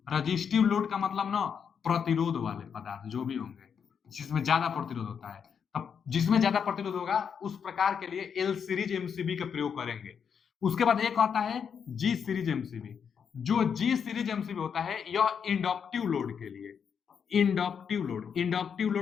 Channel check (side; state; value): right; quieter; 7.1 dB